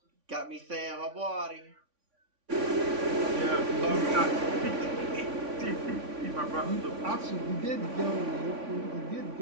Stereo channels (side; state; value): left; late; 3.5 ms